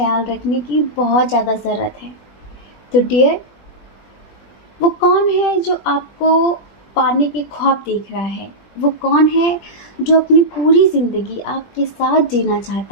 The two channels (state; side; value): late; right; 20 ms